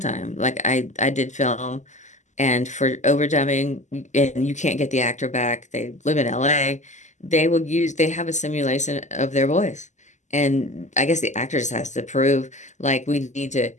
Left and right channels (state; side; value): late; right; 0.34 ms